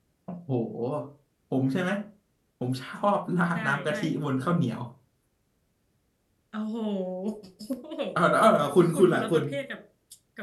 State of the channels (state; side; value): identical; both; correlation 1.00